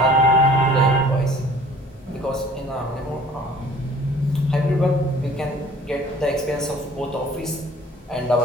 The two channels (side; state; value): both; normal; correlation 0.51